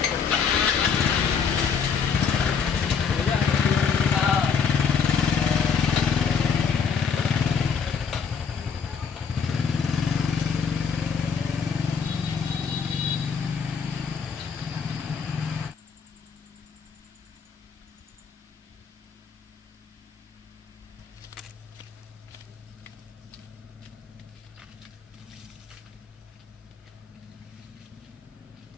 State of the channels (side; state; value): right; quieter; 6.2 dB